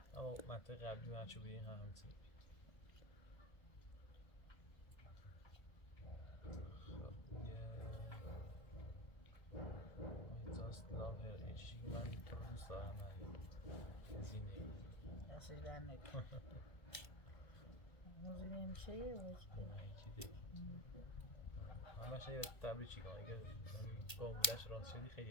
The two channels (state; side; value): late; right; 1.3 ms